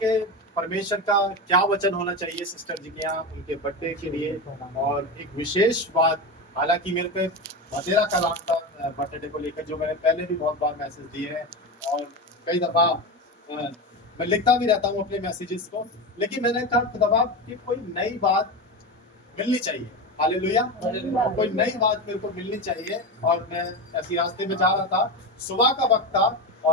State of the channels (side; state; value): both; normal; correlation 0.20